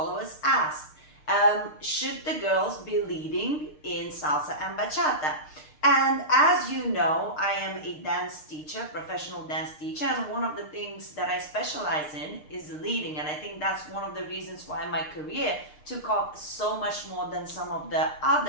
asked, should the girls be leading in salsa and bachata? And as you know, I am a dance teacher, professional dance teacher, and one of the things that I specialize in is leading. And I think that's one of the reasons why my career took off so much more than some of the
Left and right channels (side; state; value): right; late; 6.6 ms